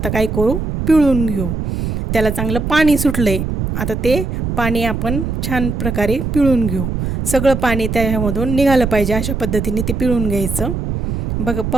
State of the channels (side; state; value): right; noise; rumble, 3 dB below the sound